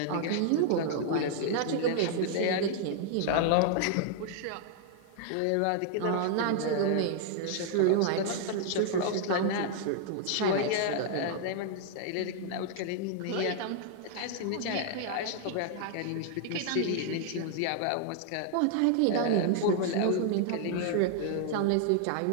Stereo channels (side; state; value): both; different; correlation 0.00